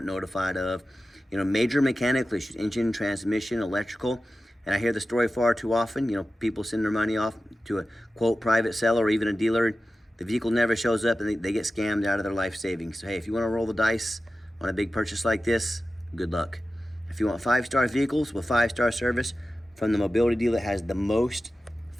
notified of, you know, major mechanical issues, engine, transmission, electrical. And I hear the story far too often. You know, people send their money off to a, quote, private seller or even a dealer. The vehicle never shows up and they get scammed out of their life savings. So, hey, if you want to roll the dice on a big purchase like this, good luck. If you want 5-star vehicles with 5-star service from the mobility dealer that has the most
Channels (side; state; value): both; normal; correlation 0.94